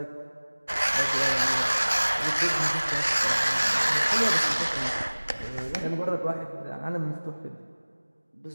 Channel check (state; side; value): inverted; both; correlation -1.00